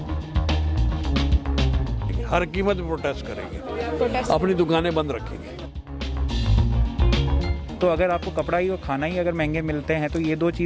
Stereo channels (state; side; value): identical; both; correlation 1.00